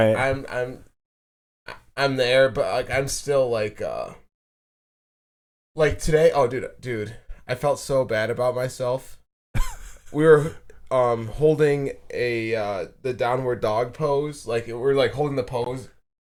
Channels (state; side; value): identical; both; correlation 1.00